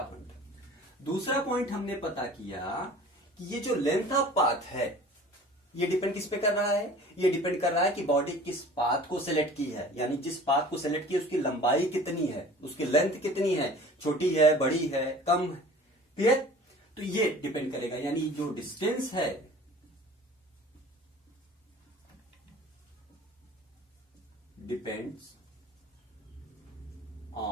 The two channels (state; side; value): normal; both; correlation 0.44